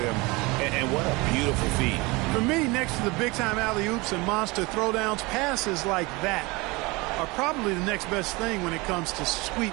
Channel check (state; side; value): quieter; left; 24.4 dB